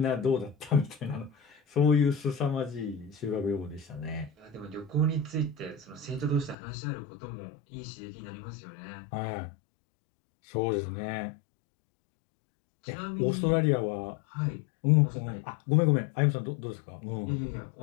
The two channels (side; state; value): right; drops out; at 6.6 s